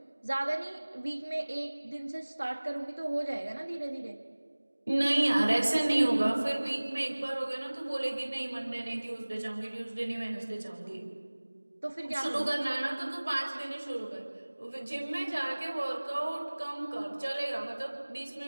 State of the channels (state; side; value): inverted; both; correlation -1.00